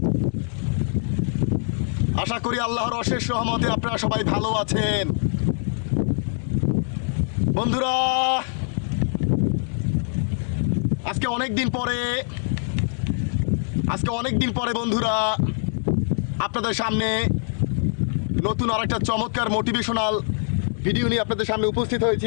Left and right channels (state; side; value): silent; right; digital silence